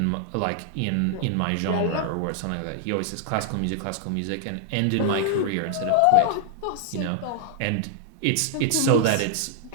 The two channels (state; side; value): different; both; correlation 0.00